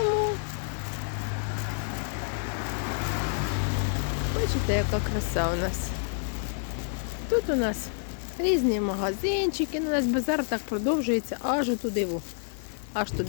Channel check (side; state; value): right; silent; 59 dB below the other